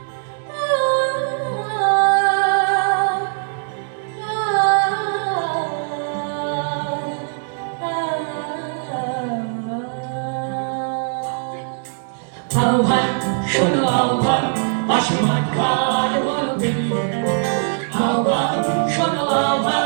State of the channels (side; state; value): left; silent; 65 dB below the other